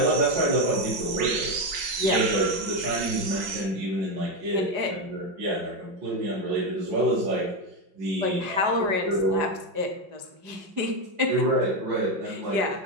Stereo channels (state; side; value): late; left; 5.8 ms